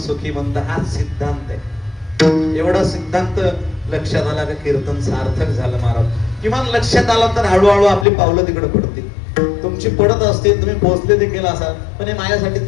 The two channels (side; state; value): right; drops out; at 8.1 s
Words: हा सिद्धांत आहे. एवढा सिद्धांत लक्षात आला का कीर्तन सार्थक झालं महाराज. किमान लक्षात आलं तर हळूहळू आपली पावलं तिकडे पडतील. तुमची पडत असतील, तुम्ही पोहोचले देखील असाल, पण हे